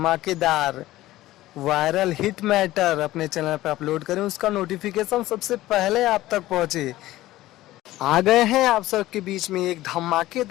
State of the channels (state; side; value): quieter; right; 16.1 dB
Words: वायरल हिट मैटर अपने चैनल पर अपलोड करें उसका नोटिफिकेशन सबसे पहले आप तक पहुंचे। आ गए हैं आप सबके बीच में एक